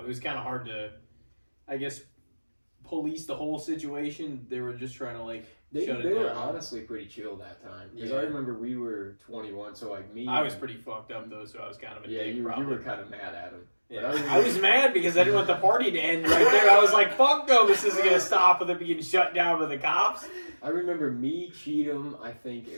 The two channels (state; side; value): inverted; both; correlation -1.00